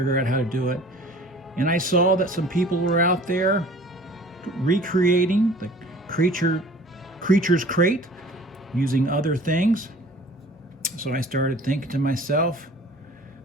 out how to do it. And I saw that some people were out there recreating the Creature's Crate using other things. So I started thinking to myself,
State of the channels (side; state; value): both; normal; correlation 0.47